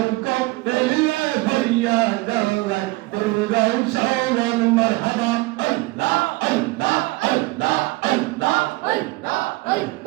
দিলে হইয়া জৌলাই দিল সমান মারহাবা আল্লাহ আল্লাহ আল্লাহ আল্লাহ আল্লাহ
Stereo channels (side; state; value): left; quieter; 22.3 dB